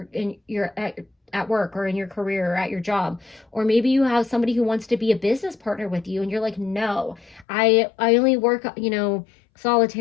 work or in your career or at your job. Or maybe you have somebody who wants to be a business partner with you, and you're like, no, I only work, you know,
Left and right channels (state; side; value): drops out; right; at 7.5 s